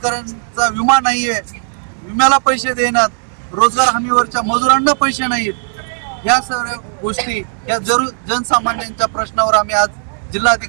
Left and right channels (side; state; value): left; silent; digital silence